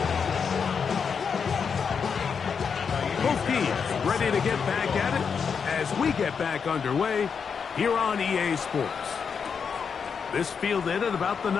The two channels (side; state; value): right; quieter; 6.3 dB